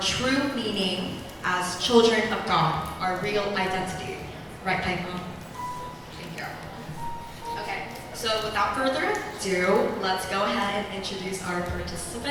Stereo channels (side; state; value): both; identical; correlation 1.00